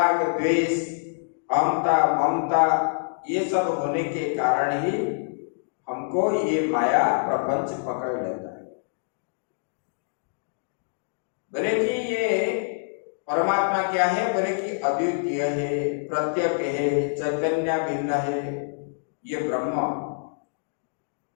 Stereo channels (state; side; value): silent; right; digital silence